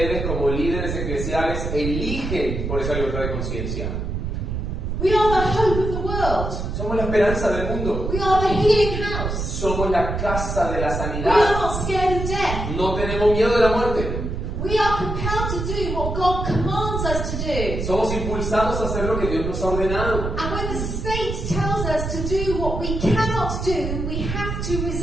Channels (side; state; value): right; noise; rumble, 3 dB below the sound